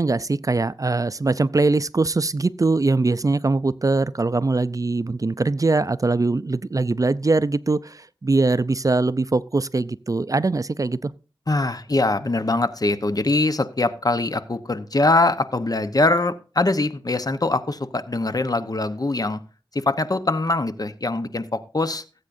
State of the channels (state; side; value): normal; both; correlation 0.74